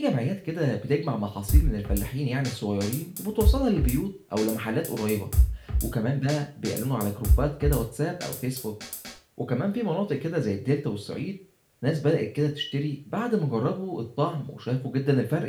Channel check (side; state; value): both; identical; correlation 1.00